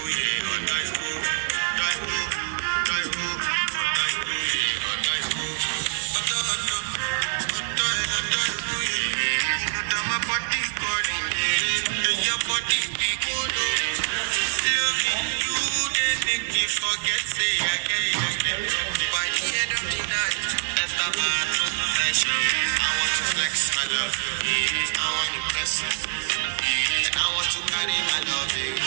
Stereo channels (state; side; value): silent; left; 62 dB below the other